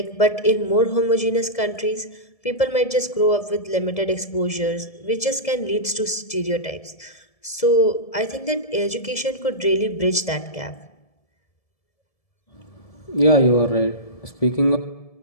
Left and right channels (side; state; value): right; late; 1.7 ms